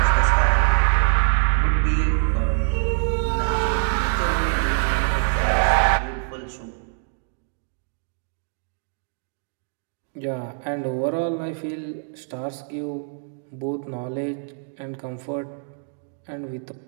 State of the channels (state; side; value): silent; left; digital silence